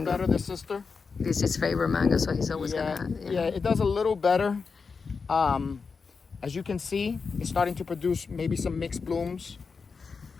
better, the sister. It's his favorite mango, so he's always gonna. Yeah, it does a little better. As you can see, it's starting to produce maybe some mixed blooms.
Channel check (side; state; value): right; quieter; 5.1 dB